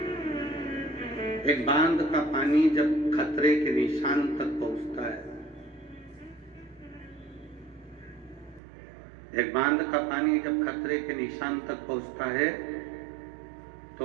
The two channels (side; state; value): left; drops out; at 8.6 s